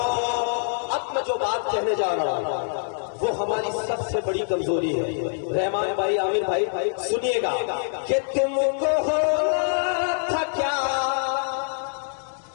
अब मैं जो बात कहने जा रहा हूँ वो हमारी सबसे बड़ी कमजोरी है। रहमान भाई, आमिर भाई, सुनिएगा कि तुमको होना था क्या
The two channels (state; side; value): silent; right; digital silence